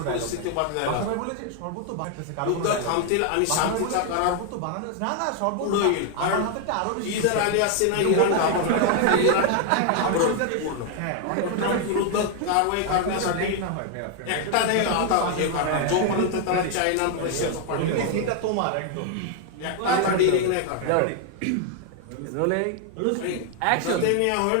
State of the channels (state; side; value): different; both; correlation 0.00